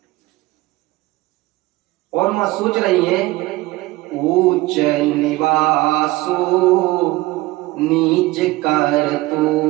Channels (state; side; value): quieter; left; 19.4 dB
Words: और मां सोच रही है, ऊंच निवासो नीच